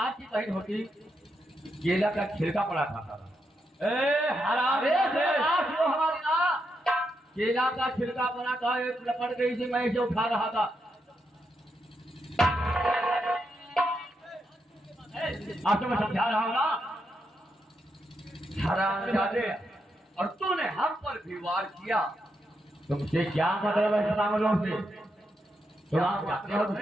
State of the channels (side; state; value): both; normal; correlation 0.82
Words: बहन होती, केला का छिलका पड़ा खाता था। हमारी ना केला का छिलका बना था, एक लपट गई थी, मैं इसे उठा रहा था। आपको मैं समझा रहा हूँ ना, हरामजादे, और तूने हम पर भी वार किया। तुमसे क्या मतलब है सतामलों से? तुम आप जाते हो